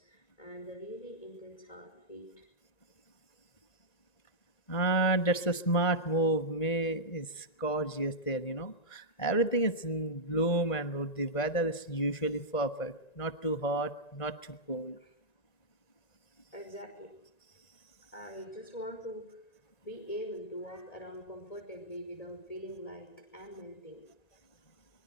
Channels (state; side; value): late; right; 1.9 ms